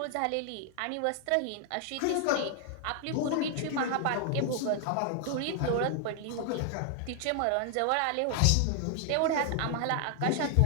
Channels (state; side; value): different; both; correlation 0.00